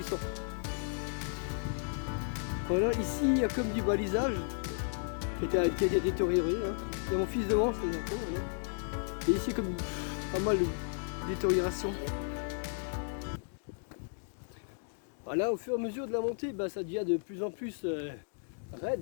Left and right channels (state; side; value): silent; right; digital silence